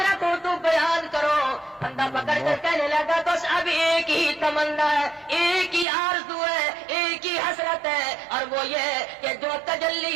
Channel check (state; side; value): drops out; left; at 5.9 s